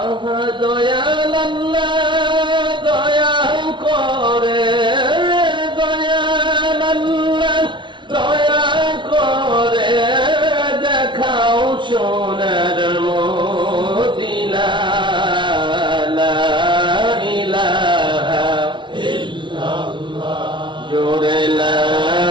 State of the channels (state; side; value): late; left; 0.24 ms